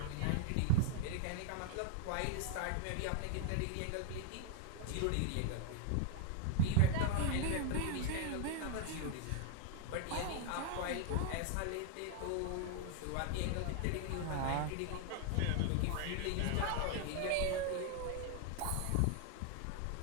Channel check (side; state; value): both; different; correlation 0.00